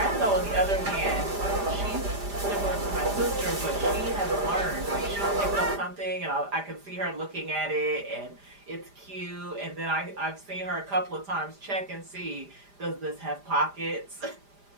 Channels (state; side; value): late; left; 5.0 ms